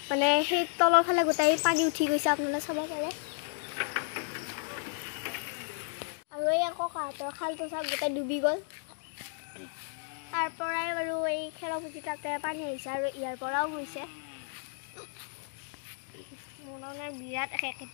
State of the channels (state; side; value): silent; right; digital silence